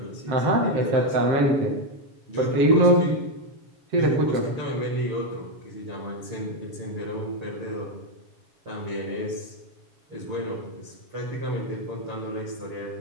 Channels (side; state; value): left; late; 7.2 ms